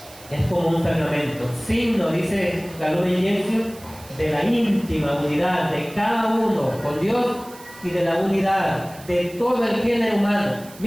Es como un sacramento, signo, dice la Lumen Gentium, de la íntima unidad de cada uno con Dios y de la unidad de todo el género humano.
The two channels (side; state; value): right; noise; hiss, 20 dB below the sound